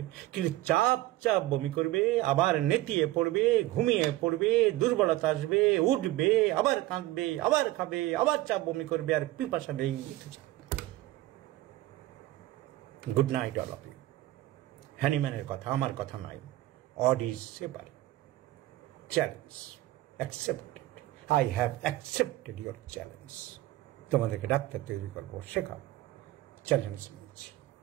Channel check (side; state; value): left; quieter; 16.7 dB